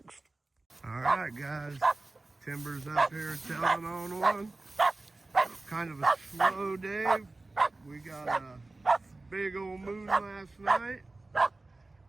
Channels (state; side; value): quieter; left; 3.1 dB